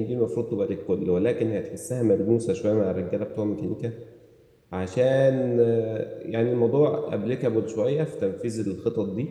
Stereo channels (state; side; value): identical; both; correlation 1.00